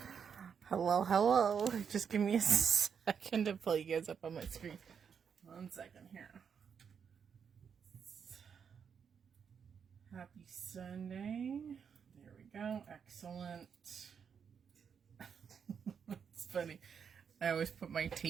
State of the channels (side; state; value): left; quieter; 7.0 dB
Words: Hello, hello. Just give me a second to pull you guys up on my screen. 1 second here. Happy Sunday. There we go. Excellent. It's funny. I always put my